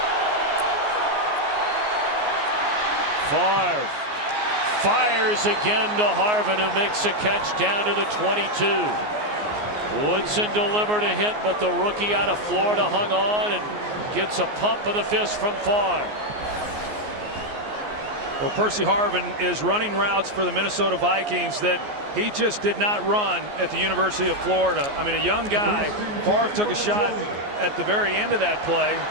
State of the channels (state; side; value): late; left; 14 ms